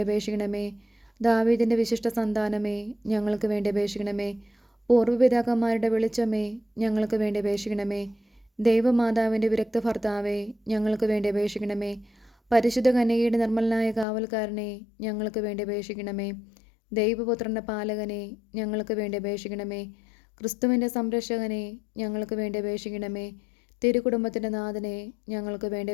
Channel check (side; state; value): right; drops out; at 14.1 s